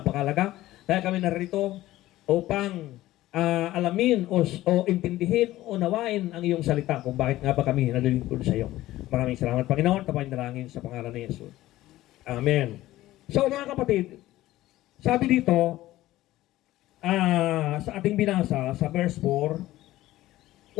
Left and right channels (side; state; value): right; quieter; 15.8 dB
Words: Kaya kami narito upang alamin o intindihin o nawain ang iyong salita kung bakit nga ba kami nalilingkod sa iyo. Maraming salamat, Panginoon. Tapain dalangin sa pangalan ni Jesus. Amen. So, mga kapatid, sabi dito, sa ating binasa, sa verse 4,